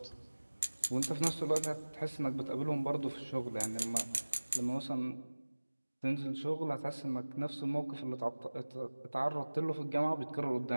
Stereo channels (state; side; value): inverted; both; correlation -1.00